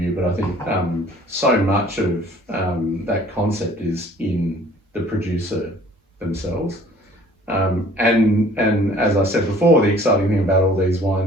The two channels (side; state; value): both; normal; correlation 0.53